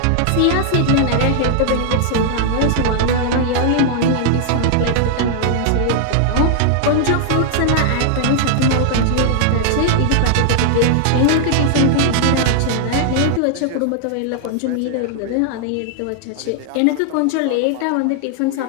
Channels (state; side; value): different; both; correlation 0.00